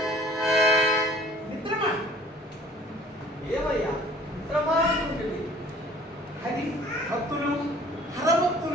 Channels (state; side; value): normal; both; correlation 0.52